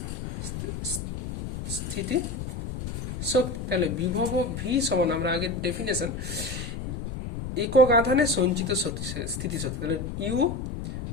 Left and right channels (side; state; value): left; noise; rumble, 6 dB below the sound